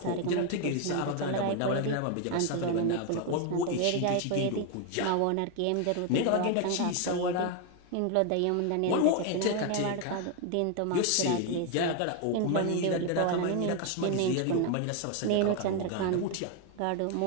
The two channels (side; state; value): both; different; correlation 0.01